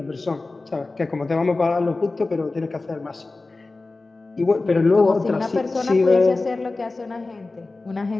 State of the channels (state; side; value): quieter; right; 3.4 dB